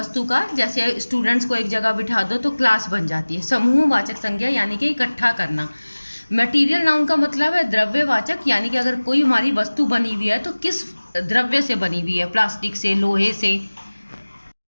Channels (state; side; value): inverted; both; correlation -1.00